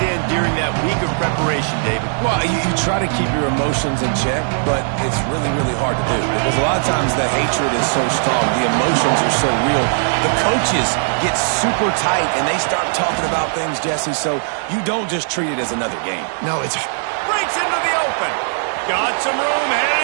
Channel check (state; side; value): silent; left; digital silence